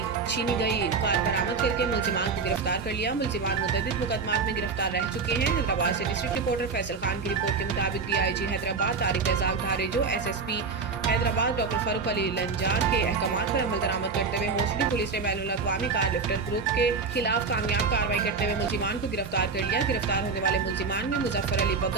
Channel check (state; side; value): quieter; left; 4.8 dB